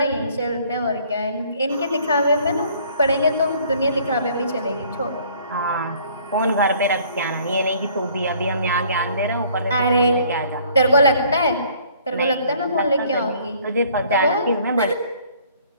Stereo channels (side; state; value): both; inverted; correlation -0.58